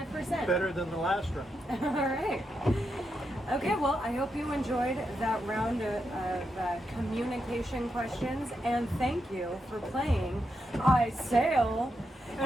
Better than the last round. All right. Okay, well, I hope you enjoyed that round of communication questions, and thank you for playing I Sail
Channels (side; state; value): both; normal; correlation 0.84